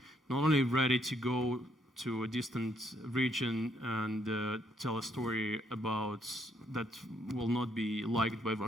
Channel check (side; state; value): both; normal; correlation 0.71